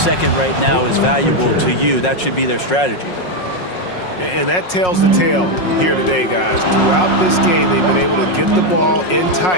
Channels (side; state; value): right; late; 5.5 ms